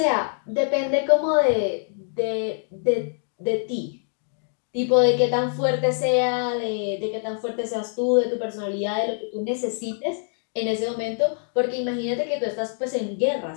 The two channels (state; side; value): silent; right; 62 dB below the other